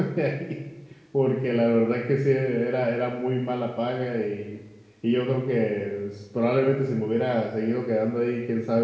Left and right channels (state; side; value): identical; both; correlation 1.00